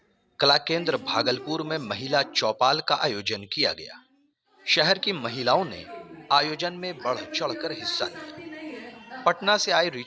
कला केंद्र भागलपुर में महिला चौपाल का आयोजन किया गया। शहर की महिलाओं ने आयोजन में बढ़ चढ़कर हिस्सा लिया। पटना से आई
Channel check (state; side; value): identical; both; correlation 1.00